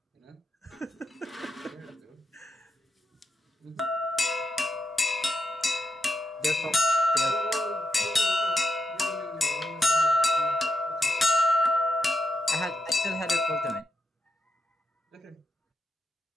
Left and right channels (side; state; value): both; normal; correlation 0.84